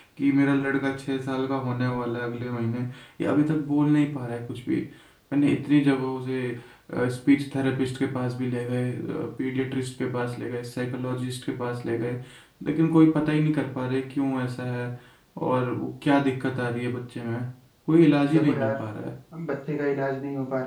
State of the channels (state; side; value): identical; both; correlation 1.00